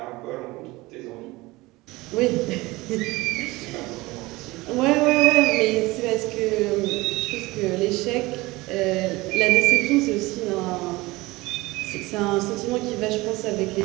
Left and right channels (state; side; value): quieter; left; 21.0 dB